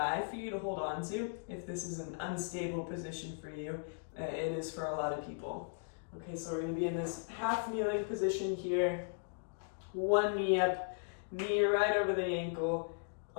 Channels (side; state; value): right; silent; digital silence